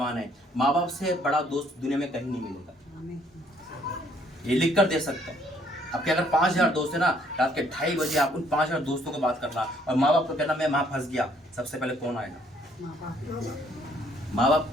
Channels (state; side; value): normal; both; correlation 0.65